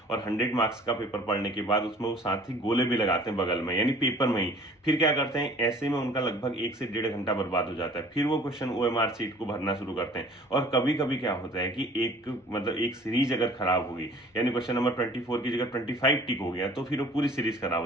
और 100 मार्क्स का पेपर पढ़ने के बाद उसमें वो साथ ही गोले भी लगाते हैं बगल में, यानी पेपर में ही। फिर क्या करते हैं, ऐसे में उनका लगभग 1 से 1.5 घंटा बर्बाद हो जाता है। फिर वो क्वेश्चन OMR सीट को भरना शुरू करते हैं। और कभी कभी क्या होता है कि एक सीरीज अगर खराब हो गई, यानी क्वेश्चन नंबर 24 की जगह 25 टिक हो गया, तो फिर वो पूरी सीरीज खराब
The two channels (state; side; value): normal; both; correlation 0.50